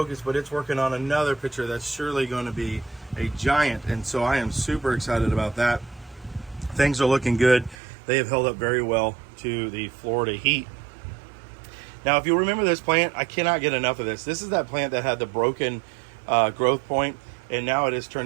but it's working on another picture that's surely going to be a giant. And so I am super excited about that. Things are looking good. They have held up very well to the Florida heat. Now, if you remember this plant, I cannot get enough of this. This is that plant that had the broken growth point, and now it has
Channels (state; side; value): drops out; left; at 7.8 s